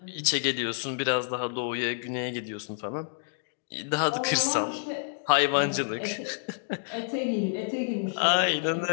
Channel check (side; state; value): right; silent; digital silence